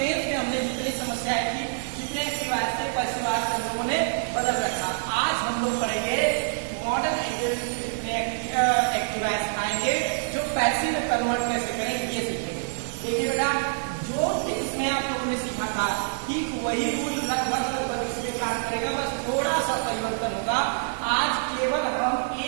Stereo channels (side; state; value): left; silent; 61 dB below the other